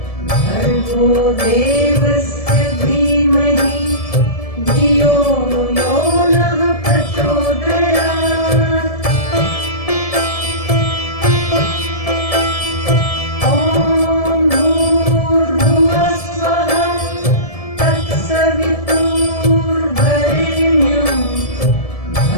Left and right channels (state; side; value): late; right; 1.7 ms